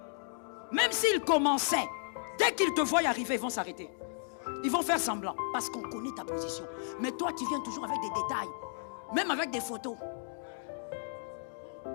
Même s'il commençait, dès qu'ils te voient arriver, ils vont s'arrêter. Ils vont faire semblant parce qu'on connaît ta position. Mais toi, tu viens toujours avec des détails, même avec des photos.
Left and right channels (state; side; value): silent; right; digital silence